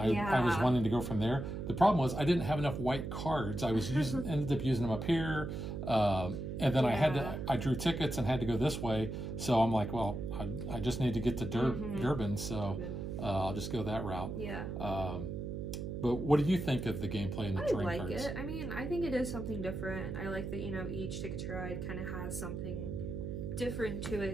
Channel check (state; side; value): noise; right; hum, 5 dB below the sound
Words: was wanting to go from there. The problem was I didn't have enough white cards. I was ended up using them up here, and then I drew tickets and had to go this way. So I'm like, well, I just need to get to Durban, so I'll just go that route. Yeah. But what do you think of the gameplay and the terrain cards? I like it. I mean, I think it is something different. I like that, you know, each Ticket to Ride kind of has something different to